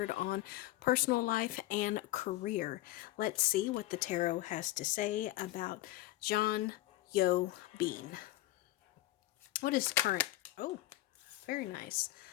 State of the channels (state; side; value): quieter; right; 16.6 dB